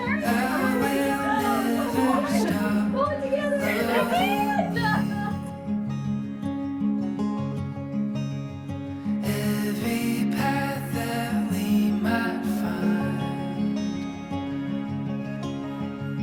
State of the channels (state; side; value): identical; both; correlation 1.00